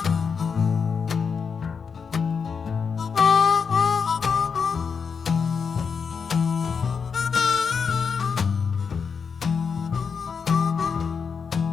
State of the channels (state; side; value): quieter; right; 6.0 dB